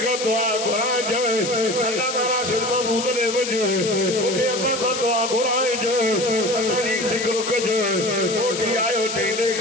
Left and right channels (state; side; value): noise; left; hiss, 6 dB below the sound